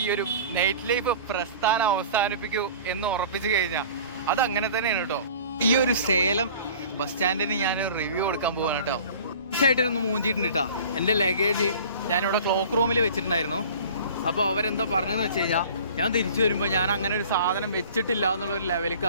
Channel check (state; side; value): inverted; both; correlation -0.44